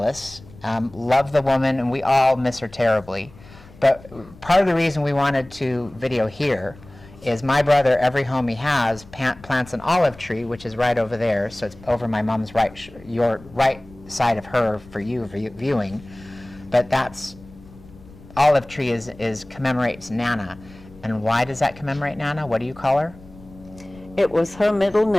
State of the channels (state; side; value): noise; left; rumble, 22 dB below the sound